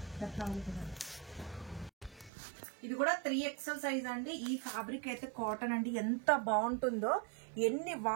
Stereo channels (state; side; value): drops out; left; at 2.3 s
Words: ఇది కూడా 3XL సైజ్ అండి. ఈ ఫ్యాబ్రిక్ అయితే కాటన్ అండి, ఎంత బాగుంటుందో. ఎన్ని